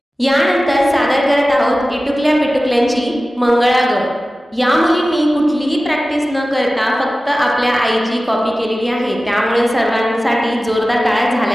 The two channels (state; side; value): normal; both; correlation 0.96